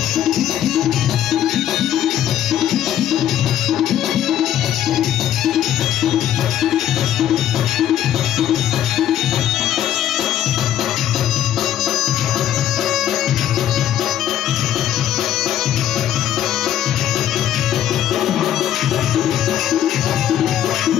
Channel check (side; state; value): right; quieter; 11.2 dB